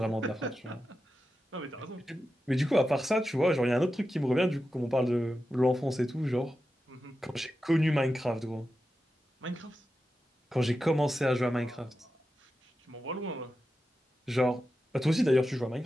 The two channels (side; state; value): both; normal; correlation 0.91